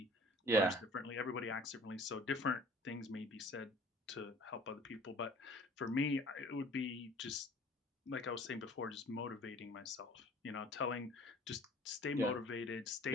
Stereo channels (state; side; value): normal; both; correlation 0.50